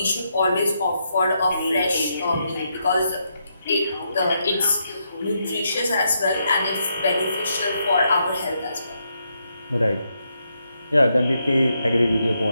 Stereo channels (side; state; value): both; inverted; correlation -0.80